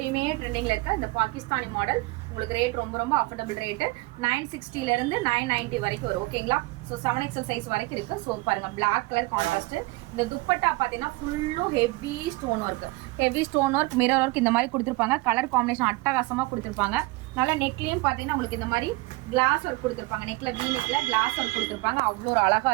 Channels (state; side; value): quieter; left; 22.6 dB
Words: ட்ரெண்டிங்கில் இருக்க இந்த பாகிஸ்தானி மாடல். உங்களுக்கு ரேட் ரொம்ப அஃபோர்டபுள் ரேட்டு. 960 990 வரைக்கும் வரும். ஓகேங்களா? ஸோ 7XL சைஸ் வரைக்கும் இருக்குது. ஸோ பாருங்கள் பிளாக் கலர் கான்ட்ராஸ்ட்டு. இந்த துப்பட்டா பார்த்தீங்கன்னா ஃபுல்லும் heavy stone work mirror work இந்த மாதிரி கொடுத்துருப்பாங்க. கலர் காம்பினேஷன் அட்டகாசமாக கொடுத்துருப்பாங்க. நல்லா நெக்லேயும் பார்த்தீங்கன்னா உங்களுக்கு இந்த மாதிரி கிளாஸ் ஒர்க் கொடுத்துருப்பாங்க. நெக்கில் வீனெக்கில் கிளாஸ் ஒர்க் கொடுத்துருப்பாங்க. அவ்வளோ ஒரு அழகாக